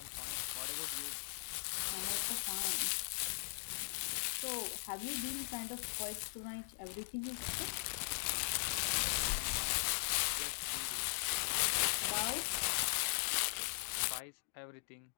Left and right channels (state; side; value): silent; right; digital silence